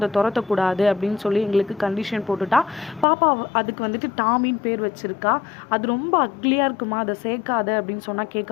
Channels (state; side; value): drops out; right; at 3.1 s